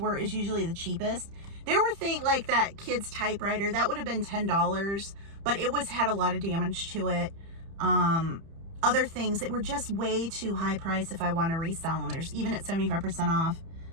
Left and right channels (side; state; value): left; late; 30 ms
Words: were, is usually the cheapest. There were things like that kid's typewriter. That would have been $10, but it had a lot of damage to it. Other things that were just way too high price if I want to resell them. There's even at 75% off.